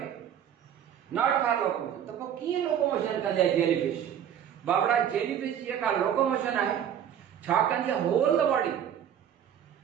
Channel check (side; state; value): left; quieter; 9.4 dB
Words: not for locomotion. तो की locomotion कंदे jellyfish? बाबरा jellyfish ये का locomotion है छा कंदे whole the body